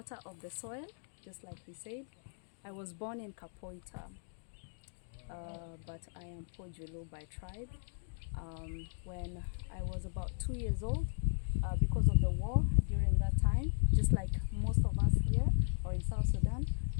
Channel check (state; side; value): silent; right; digital silence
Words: of the soil, just like he said. I was born in Kapoita, but I am Pojulu by tribe. When I was about 2 years old, because of the war during that time, just like most of us here or in South Sudan,